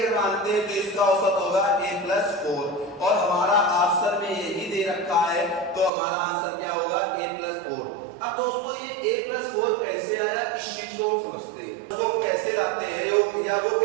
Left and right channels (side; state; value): left; drops out; at 5.9 s